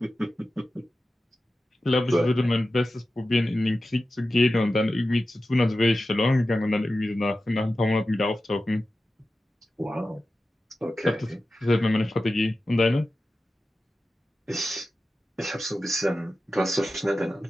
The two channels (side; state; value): both; normal; correlation 0.93